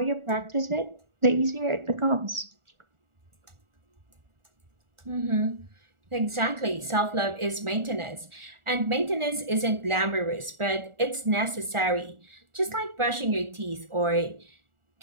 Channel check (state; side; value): late; left; 1.4 ms